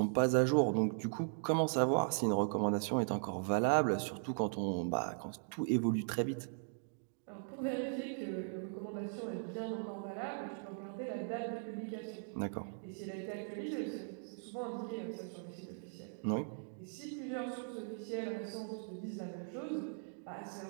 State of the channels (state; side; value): silent; left; digital silence